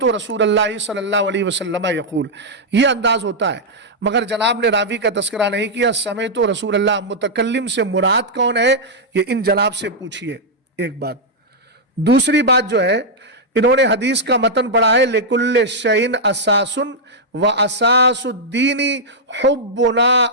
رسول اللہ صلی اللہ علیہ وسلم یقول. یہ انداز ہوتا ہے، مگر جناب نے راوی کا تذکرہ نہیں کیا. سمعت رسول اللہ، متکلم سے مراد کون ہے یہ ان جناب سے پوچھئے. ایک بات. دوسری بات جو ہے، انہوں نے حدیث کا متن پڑھا ہے لِكُلِّ شَيْءٍ أَسَاسٌ وَأَسَاسُ الدِّينِ حُبُّنَا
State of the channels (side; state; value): both; normal; correlation -0.05